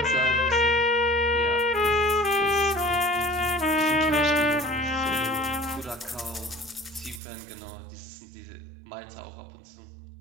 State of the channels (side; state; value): left; drops out; at 7.2 s